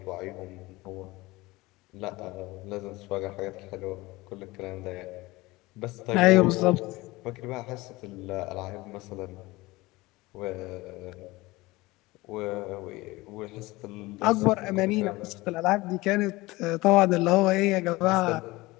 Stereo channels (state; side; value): quieter; right; 20.9 dB